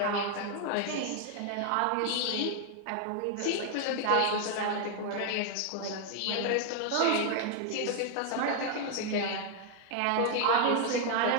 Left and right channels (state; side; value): different; both; correlation 0.00